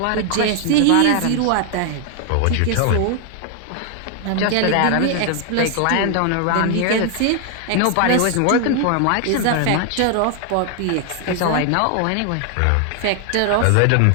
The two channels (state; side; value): different; both; correlation 0.00